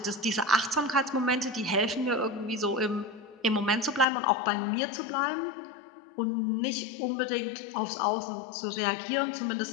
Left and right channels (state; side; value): drops out; right; at 4.0 s